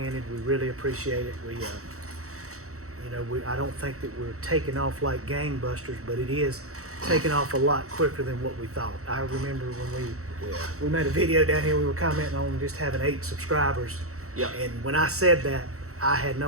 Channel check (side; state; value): left; late; 0.64 ms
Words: We really appreciate it. I don't think that we're taking off like gangbusters, but it is taking off a lot quicker than what we thought. I remember when we made a video down here, we were commenting on just having 8 subscribers. Yep. And when I said that, I had